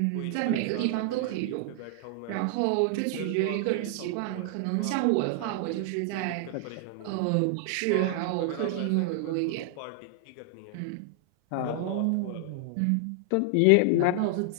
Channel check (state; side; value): different; both; correlation 0.00